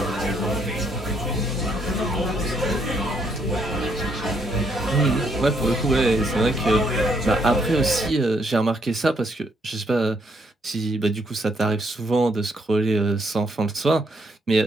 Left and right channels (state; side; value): normal; both; correlation 0.73